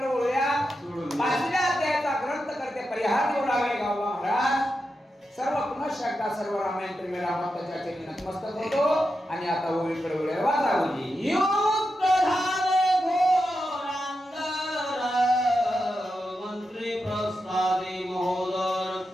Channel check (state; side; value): normal; both; correlation 0.88